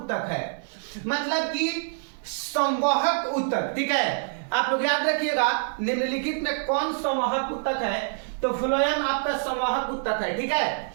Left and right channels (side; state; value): left; silent; digital silence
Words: है? मतलब कि संवाहक उत्तक, ठीक है। आप लोग याद रखिएगा निम्नलिखित में कौन संवाहक उत्तक है? तो फ्लोएम आपका संवाहक उत्तक है, ठीक है।